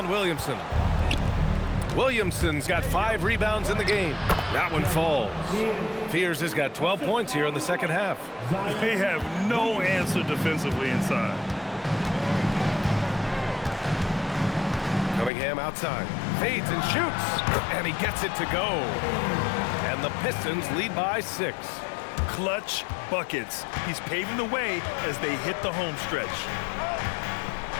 Williamson. Williamson's got 5 rebounds in the game. That one falls. Fears has got 12 points here in the second half. They have no answer defensively inside. Cunningham outside. Fades and shoots. And he gets it to go. And the Pistons lead by 6. Clutch buckets. He's paving the way as they hit the home stretch.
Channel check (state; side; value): drops out; right; at 15.3 s